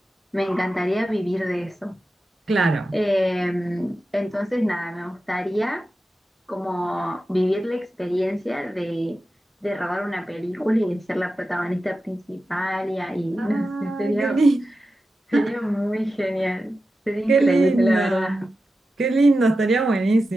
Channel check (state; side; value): normal; both; correlation 0.92